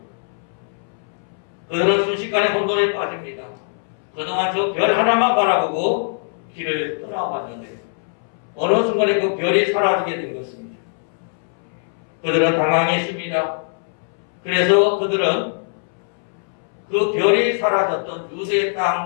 그들은 순식간에 혼돈에 빠집니다. 그동안 저 별 하나만 바라보고 길을 떠나왔는데 어느 순간에 그 별이 사라지게 된 것입니다. 그들은 당황했습니다. 그래서 그들은 그 별이 사라졌던 유대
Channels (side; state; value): right; silent; 65 dB below the other